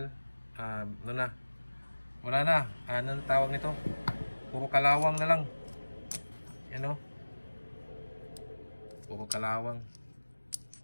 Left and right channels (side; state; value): both; inverted; correlation -1.00